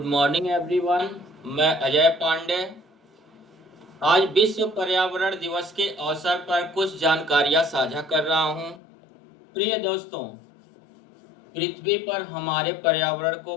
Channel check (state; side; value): drops out; right; at 8.8 s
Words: morning everyone. मैं अजय पांडे। आज विश्व पर्यावरण दिवस के अवसर पर कुछ जानकारियां साझा कर रहा हूं। प्रिय दोस्तों, पृथ्वी पर हमारे पर्यावरण को